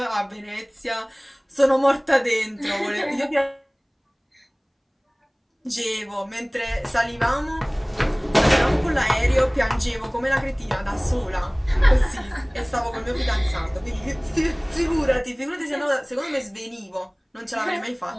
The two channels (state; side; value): identical; both; correlation 1.00